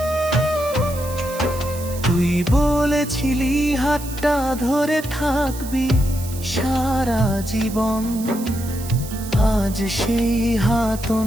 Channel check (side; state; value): right; noise; hiss, 14 dB below the sound